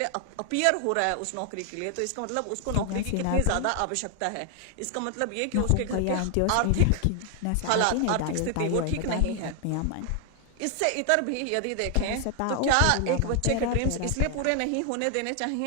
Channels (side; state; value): both; different; correlation 0.00